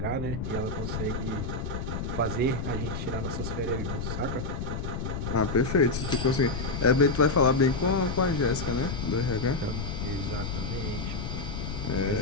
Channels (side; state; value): left; noise; rumble, 4 dB below the sound